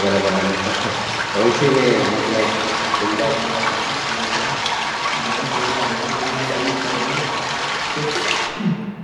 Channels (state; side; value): identical; both; correlation 1.00